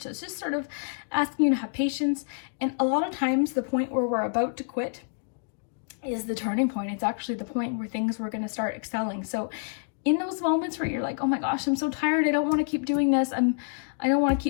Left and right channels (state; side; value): silent; right; digital silence